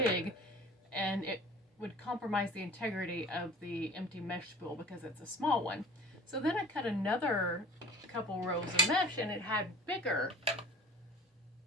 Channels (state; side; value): normal; both; correlation 0.43